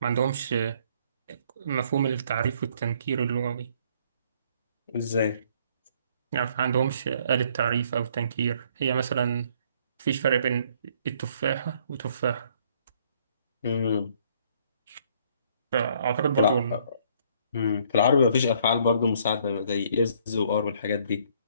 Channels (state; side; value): inverted; both; correlation -0.63